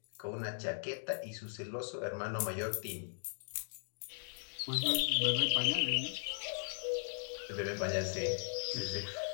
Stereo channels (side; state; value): right; silent; digital silence